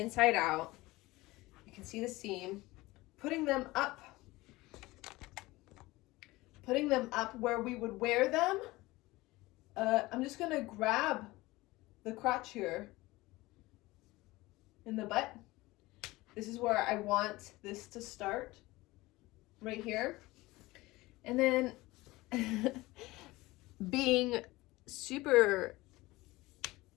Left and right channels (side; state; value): right; quieter; 20.1 dB